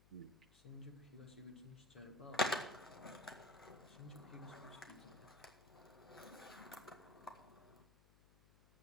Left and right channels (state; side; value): noise; left; hum, 24 dB below the sound